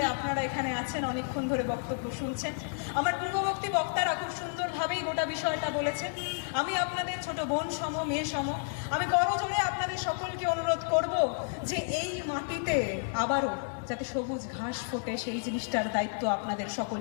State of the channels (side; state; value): right; silent; digital silence